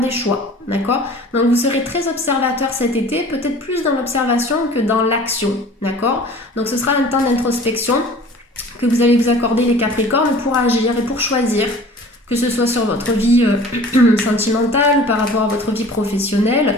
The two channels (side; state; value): both; normal; correlation 0.45